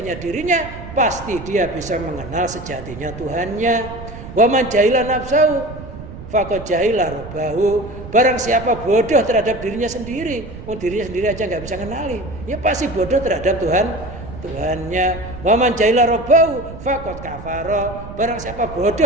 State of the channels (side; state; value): right; noise; rumble, 12 dB below the sound